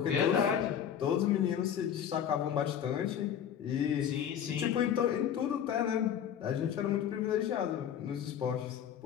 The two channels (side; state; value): right; quieter; 9.1 dB